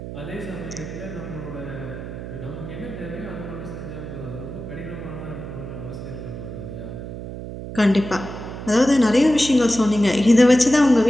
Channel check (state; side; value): noise; right; hum, 9 dB below the sound